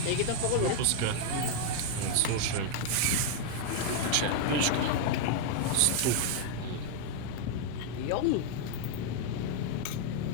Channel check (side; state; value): both; different; correlation 0.00